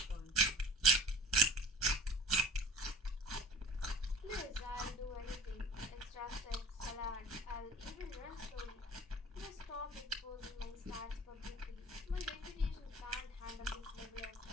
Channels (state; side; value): normal; both; correlation 0.41